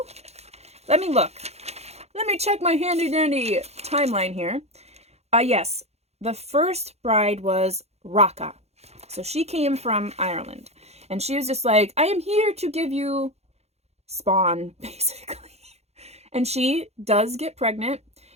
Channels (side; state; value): left; late; 0.31 ms